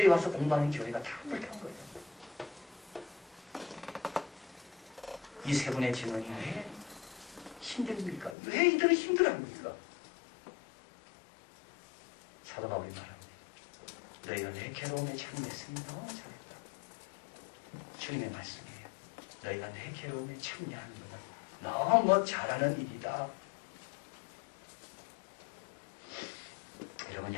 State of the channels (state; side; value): drops out; right; at 8.3 s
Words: 와서 공부하는 교회가 다 불탄 거예요. 이 세 분의 증언이 왜 힘듭니까? 왜 이들은 힘들어합니까? 사도 바울이 말합니다. 너희가 내 괴로움에 참여했으니 너무 잘했다. 주님의 말씀이에요. 너희가 내 괴로움에 참여하는 것은 너무 잘하는 일이다. 여러분,